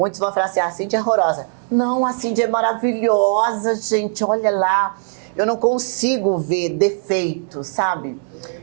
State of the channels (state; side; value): silent; left; 65 dB below the other